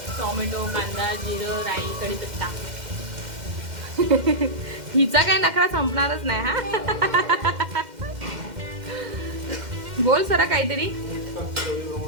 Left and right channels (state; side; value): late; left; 2.1 ms